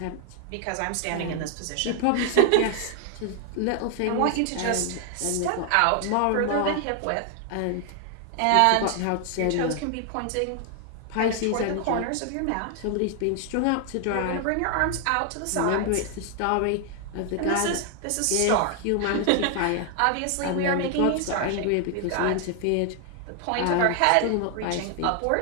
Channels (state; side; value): different; both; correlation 0.00